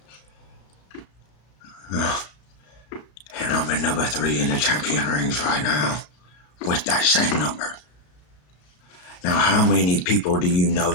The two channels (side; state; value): right; late; 34 ms